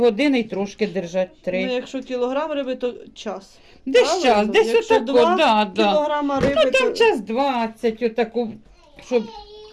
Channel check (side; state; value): both; identical; correlation 1.00